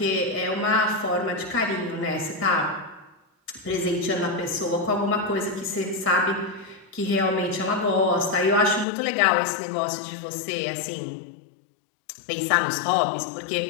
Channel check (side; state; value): right; drops out; at 8.8 s